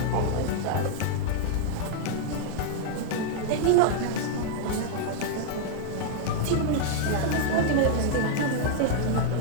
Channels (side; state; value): both; different; correlation -0.01